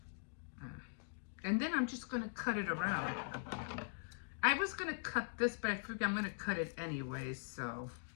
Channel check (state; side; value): silent; right; digital silence